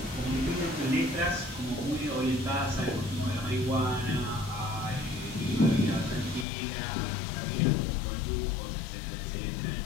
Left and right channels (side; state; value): right; drops out; at 6.5 s